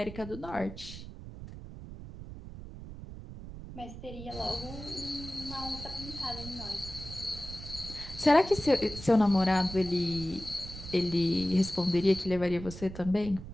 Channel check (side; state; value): right; noise; rumble, 12 dB below the sound